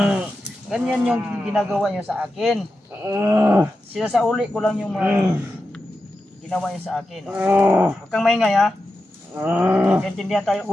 Ganyan yung ginagawa niyo sa akin. Sinasauli ko lang yung mga ginawa niyo sa akin. Huwag kang maingay ha. Nagkaintindihan tayo.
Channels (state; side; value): normal; both; correlation 0.90